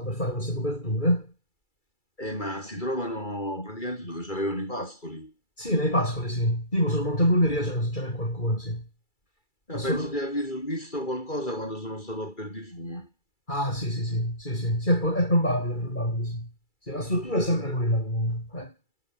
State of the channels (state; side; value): late; right; 2.3 ms